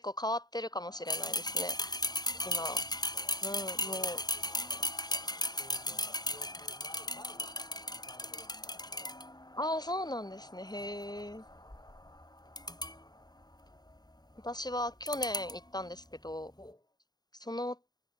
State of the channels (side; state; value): right; late; 0.20 ms